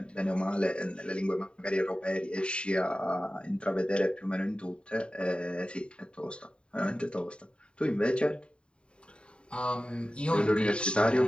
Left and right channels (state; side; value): late; right; 0.053 ms